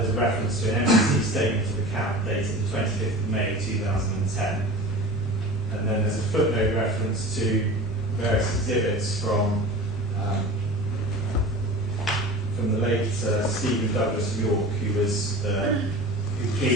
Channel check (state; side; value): normal; both; correlation 0.36